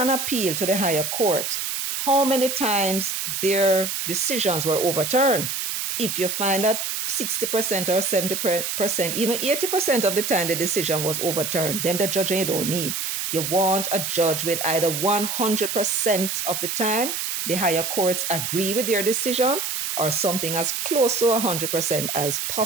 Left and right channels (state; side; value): noise; right; hiss, 3 dB below the sound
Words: appeal to the higher court, how many times their decisions were overturned. If you find that 60% or 70%, even 80% of the time the decision was overturned, then the judge you don't need. You want a judge with either 100% of the time the higher courts agree with their decision, or something as close to 100% as